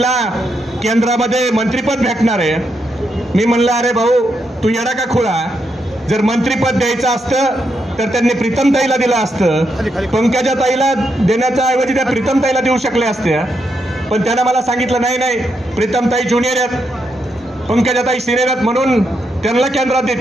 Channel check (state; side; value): normal; both; correlation 0.81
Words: केंद्रामध्ये मंत्रिपद भेटणार आहे. मी म्हणलं अरे भाऊ तू येडा का खुळा, जर मंत्रिपद द्यायचं असतं तर त्यांनी प्रीतमताईला दिलं असतं, पंकजाताईला देण्याच्या ऐवजी त्या प्रीतमताईला देऊ शकले असते. पण त्यानं मला सांगितलं नाही नाही, प्रीतमताई ज्युनियर आहेत, पंकजाताई सिनियर आहेत, म्हणून त्यांना केंद्रात